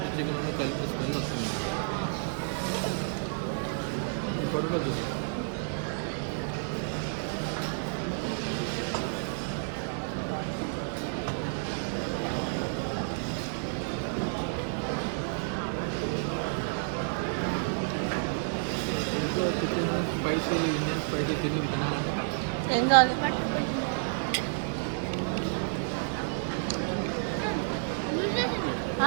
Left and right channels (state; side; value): silent; left; 57 dB below the other